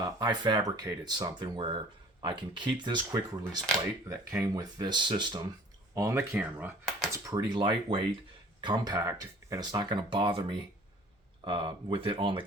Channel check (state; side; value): normal; both; correlation 0.50